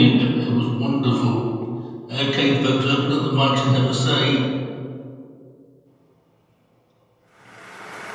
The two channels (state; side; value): identical; both; correlation 1.00